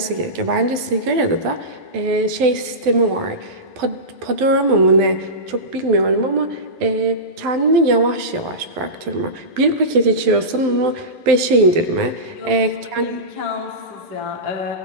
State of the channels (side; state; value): left; late; 12 ms